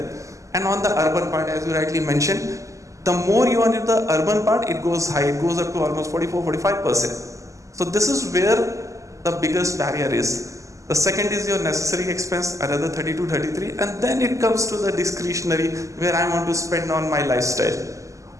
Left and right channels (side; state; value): left; late; 0.16 ms